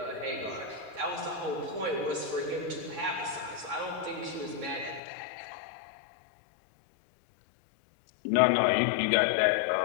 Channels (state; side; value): drops out; right; at 5.0 s